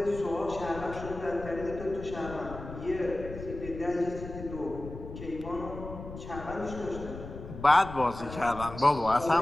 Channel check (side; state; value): left; noise; rumble, 11 dB below the sound